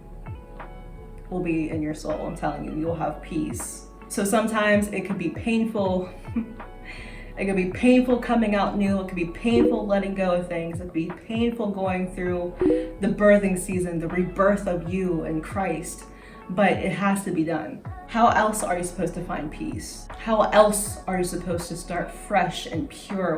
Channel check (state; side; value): identical; both; correlation 1.00